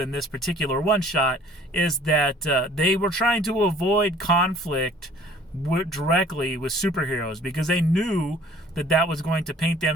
this particular one shot, is that they were trying to avoid conflict directly with superheroes because they knew that was going to paint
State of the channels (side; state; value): both; normal; correlation 0.53